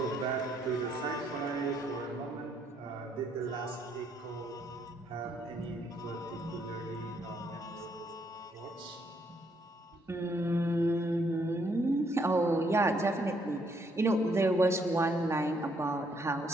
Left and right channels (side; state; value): both; normal; correlation 0.71